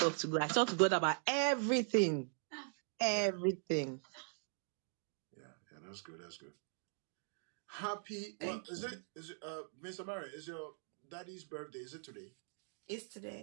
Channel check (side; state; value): left; silent; digital silence